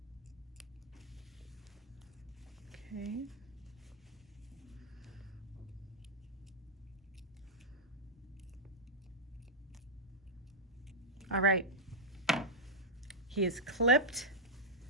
Okay. All right. He is clipped.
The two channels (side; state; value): both; normal; correlation -0.04